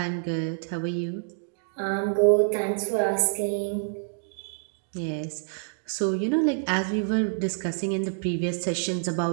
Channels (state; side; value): silent; left; 60 dB below the other